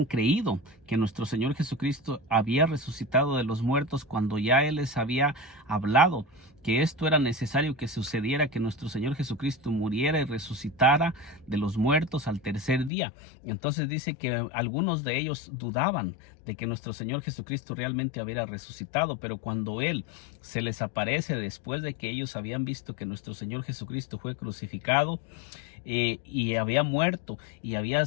creído que nuestro Señor Jesucristo había resucitado de los muertos cuando ya Él les había hablado que esto era necesario que sucediera, que nuestro Señor Jesucristo muriera y resucitara de los muertos al tercer día. Entonces dice que algunos de ellos dudaban de que nuestro Señor Jesucristo realmente había resucitado, pero cuando Él se les aparece después de que ellos habían visto que nuestro Señor Jesucristo fue crucificado y había muerto y había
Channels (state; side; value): drops out; right; at 12.9 s